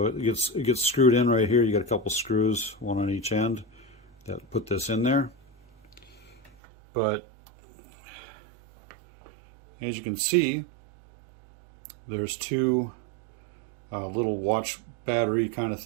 it gets screwed in right here. You got a couple screws, one on each end, that put this in there. But as you can see, there's two little watch battery kind of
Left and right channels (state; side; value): drops out; left; at 6.5 s